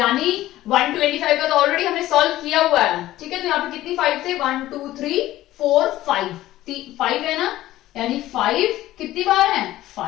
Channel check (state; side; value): quieter; right; 15.2 dB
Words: 125 का तो ऑलरेडी हमने सॉल्व किया हुआ है, ठीक है। तो यहाँ पे कितनी 5 थे, 1 2 3 4 5, 5 है ना, यानी 5 कितनी बार है,